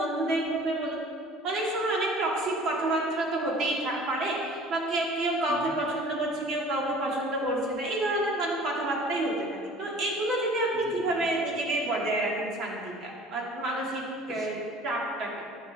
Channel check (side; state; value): both; normal; correlation 0.47